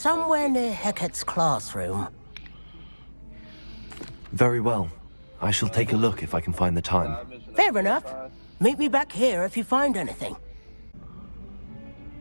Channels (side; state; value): both; inverted; correlation -1.00